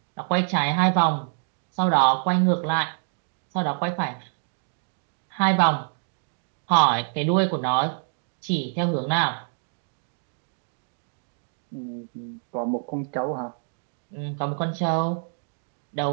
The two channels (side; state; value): left; silent; 61 dB below the other